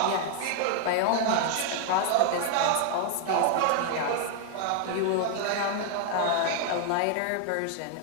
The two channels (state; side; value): different; both; correlation 0.00